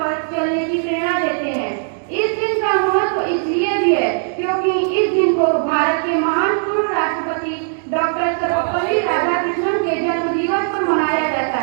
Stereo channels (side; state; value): left; silent; 66 dB below the other